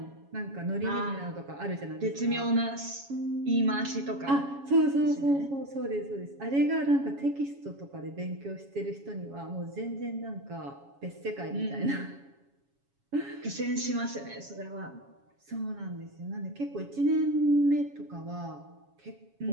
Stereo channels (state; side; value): late; left; 7.2 ms